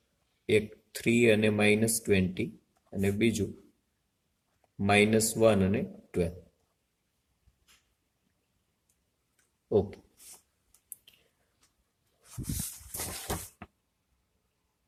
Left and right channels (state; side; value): identical; both; correlation 1.00